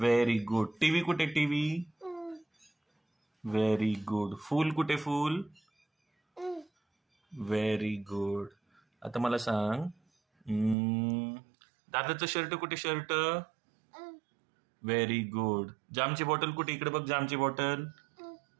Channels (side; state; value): left; drops out; at 10.8 s